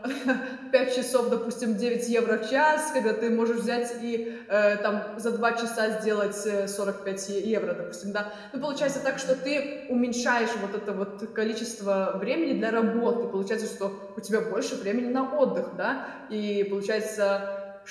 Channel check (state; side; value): identical; both; correlation 1.00